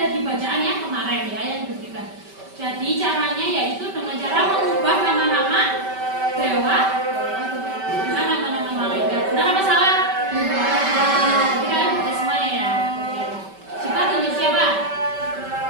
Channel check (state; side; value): late; left; 5.2 ms